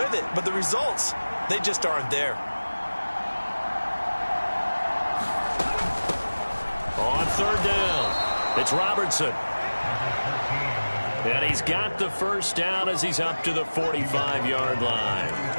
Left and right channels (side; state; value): both; inverted; correlation -1.00